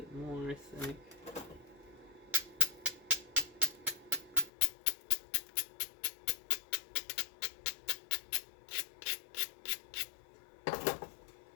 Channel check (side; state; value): right; drops out; at 4.5 s